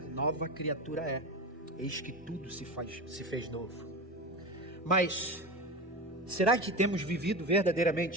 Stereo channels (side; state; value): both; normal; correlation 0.24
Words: nova criatura é. Eis que tudo se fez novo. Mas, será que temos vivido